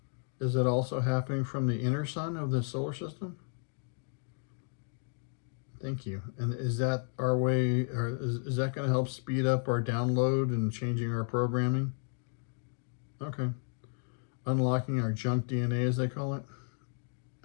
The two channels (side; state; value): right; silent; 56 dB below the other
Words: Is it also happening from the inner sun of the solar system? Thank you. And is that our way, or is that going to help speed up our download and changing our programming? Okay. Unlocking our junk DNA, as they call it?